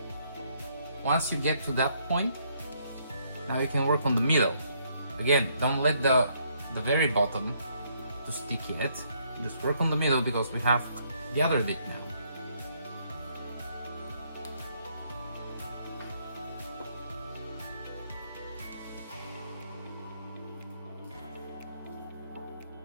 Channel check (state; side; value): inverted; both; correlation -0.70